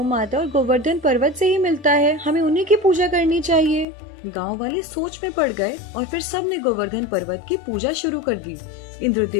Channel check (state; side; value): drops out; right; at 3.9 s